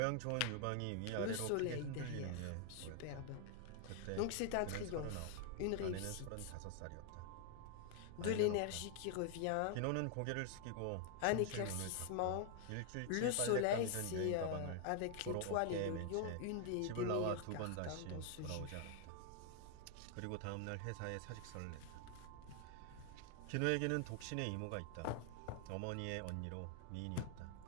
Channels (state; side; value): different; both; correlation 0.00